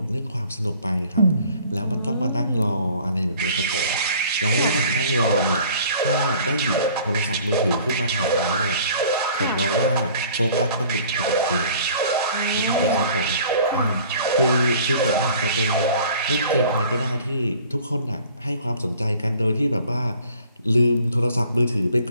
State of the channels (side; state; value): both; inverted; correlation -0.52